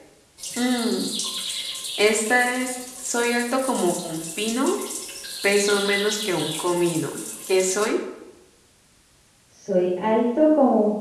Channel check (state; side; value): identical; both; correlation 1.00